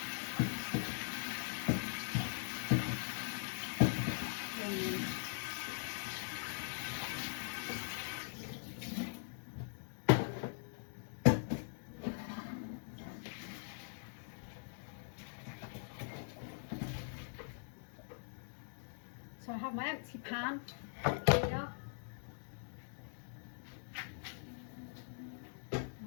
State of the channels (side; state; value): right; silent; digital silence